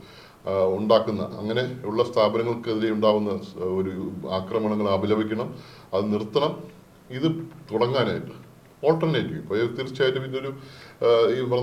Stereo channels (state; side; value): identical; both; correlation 1.00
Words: ഉണ്ടാക്കുന്ന അങ്ങനെ ഉള്ള സ്ഥാപനങ്ങൾക്കെതിരെ ഉണ്ടാകുന്ന ഒരു ആക്രമണങ്ങൾ അപലപിക്കണം, അത് നിർത്തണം. ഇത് തുടങ്ങാനായിട്ട് ഓൾട്ടർനേറ്റീവ് ഇപ്പോൾ തീർച്ചയായിട്ടും ഇതൊരു ഈ